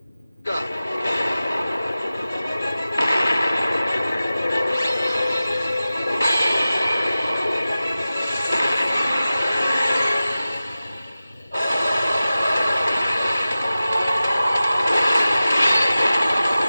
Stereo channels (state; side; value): inverted; both; correlation -0.95